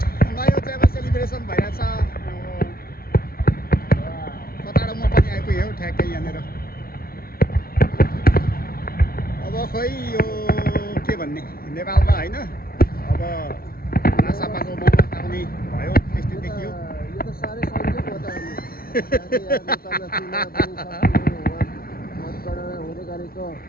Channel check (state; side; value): late; right; 0.43 ms